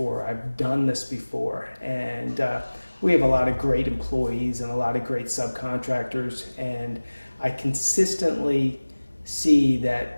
I've done this before. And we have a lot of great employees and a lot of great subcontractors, and I consistently see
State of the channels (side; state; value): both; inverted; correlation -1.00